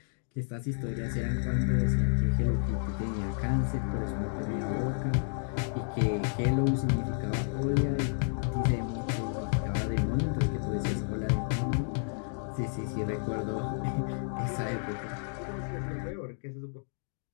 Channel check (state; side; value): silent; right; digital silence